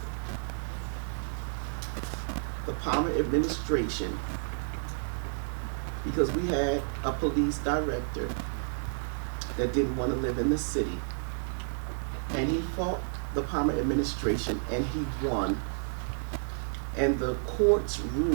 the Palmer administration because we had a police director that didn't want to live in the city. And he fought the Palmer administration and he won. And the courts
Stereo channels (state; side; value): silent; left; digital silence